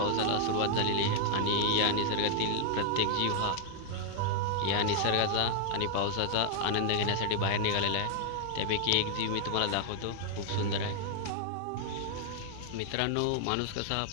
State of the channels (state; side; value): different; both; correlation 0.00